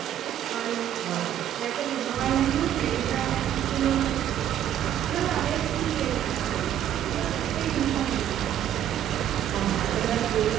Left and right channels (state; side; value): quieter; left; 10.7 dB